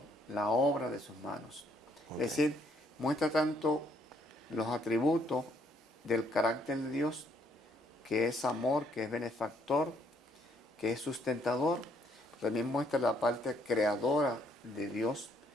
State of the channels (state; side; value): normal; both; correlation 0.69